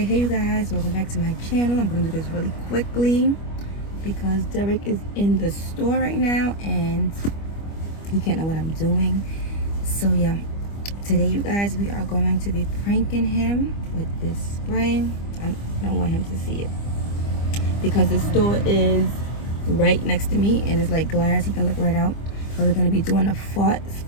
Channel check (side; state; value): right; late; 25 ms